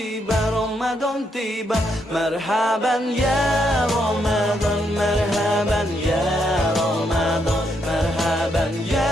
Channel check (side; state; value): both; normal; correlation 0.77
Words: Ramadan tiba. Marhaban ya Ramadan, marhaban ya Ramadan, marhaban